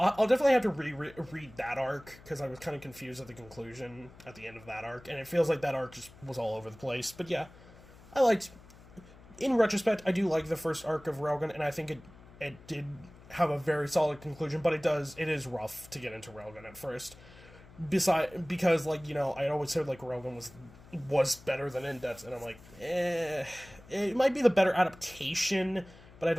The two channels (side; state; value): left; noise; hum, 21 dB below the sound